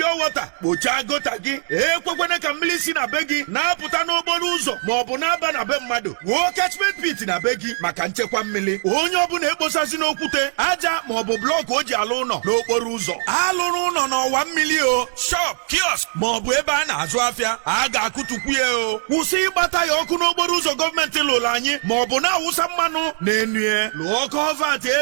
water kpocha gota gị ekwekwana ka mmiri si na be gị na-apụta n'okporo ụzọ maọbụ na-aba na be mmadụ wuo catchment pit na be gị maka nchekwa mmiri onye ọbụla ekposasi n'okwute aja maọbụ blọk o ji alụ ụlọ n'okporo ụzọ alụrụ ụlọ n'ọwa mmiri o shop kiosk maọbụ ebe a na-azụ afịa a ga-akụtukwu ya o kwụsị ịgbata ya ọkụ n'okporo ụzọ gọọmenti lụrụ anyị maọbụ na-awụsa mmanụ na-enue lụọ kọvat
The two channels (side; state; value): left; silent; digital silence